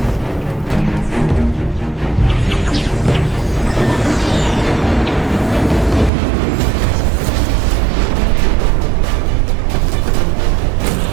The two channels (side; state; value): left; drops out; at 6.1 s